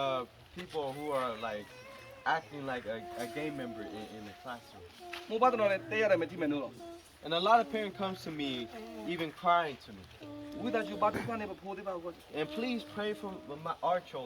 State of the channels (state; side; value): identical; both; correlation 1.00